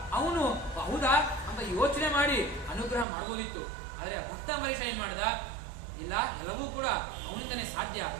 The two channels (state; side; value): drops out; left; at 3.1 s